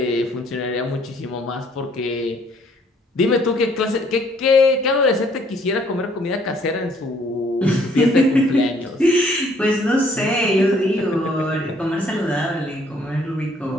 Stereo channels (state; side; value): normal; both; correlation 0.63